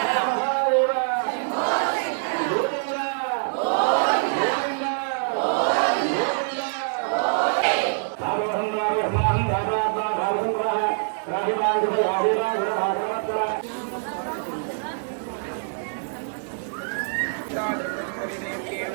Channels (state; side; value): silent; left; digital silence